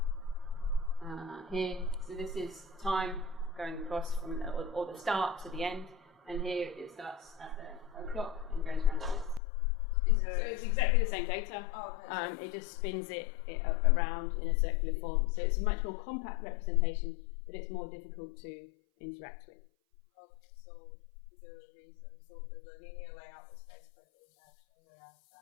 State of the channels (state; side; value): drops out; right; at 9.4 s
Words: Here, so this is time going across from or the start to the end, and here it starts at the clock and goes around to this. So it's exactly the same data. Oh, okay. It just spins it around in a circular form. So it's a much more compact representation, but it's more difficult to interact with. Okay, so is there a reason? So the linear layout is basically the interaction, whereas